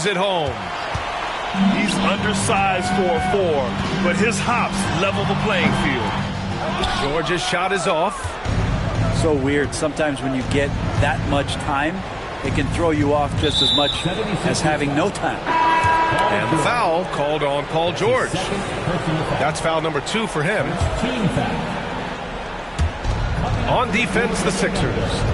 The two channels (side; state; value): both; identical; correlation 1.00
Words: it home. He's undersized for a 4, but his hops level the playing field. George's shot is off. So weird. Sometimes when you get that much time, it can throw you off just as much as having no time. And the foul called on Paul George. That's foul number 2 for him. On defense, the Sixers.